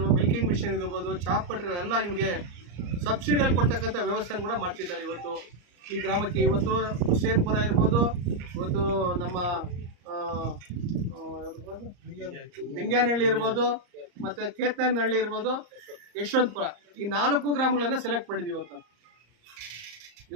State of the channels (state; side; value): late; left; 34 ms